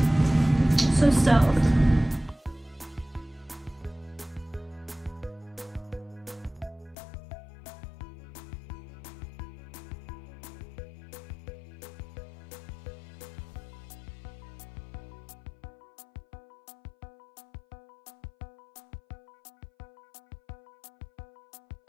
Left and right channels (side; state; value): right; drops out; at 7.0 s